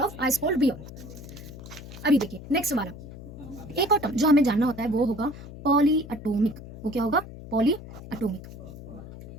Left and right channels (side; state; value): left; noise; hum, 14 dB below the sound